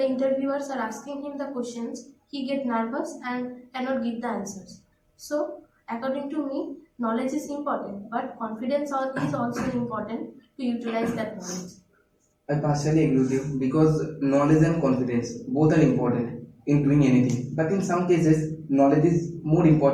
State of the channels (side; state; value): both; identical; correlation 1.00